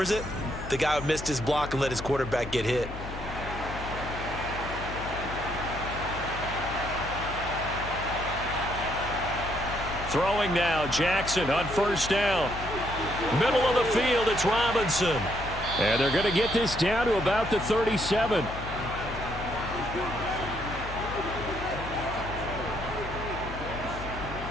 it? The guy who missed his block and let his quarterback get hit. Throwing now, Jackson on 1st down. Middle of the field, it's Robinson. And they're going to get this down to about the 37.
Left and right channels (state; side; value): noise; left; hum, 9 dB below the sound